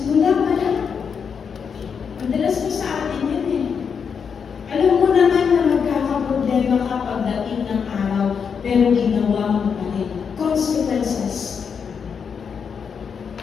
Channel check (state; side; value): quieter; right; 6.5 dB